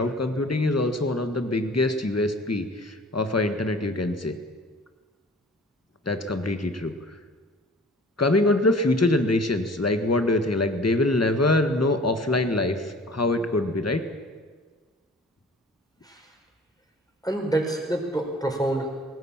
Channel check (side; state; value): both; normal; correlation 0.47